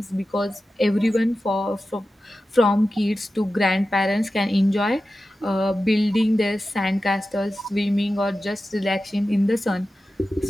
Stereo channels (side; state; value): both; normal; correlation 0.93